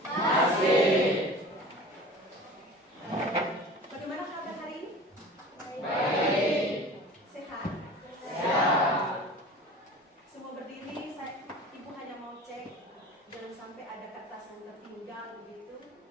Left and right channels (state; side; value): normal; both; correlation 0.39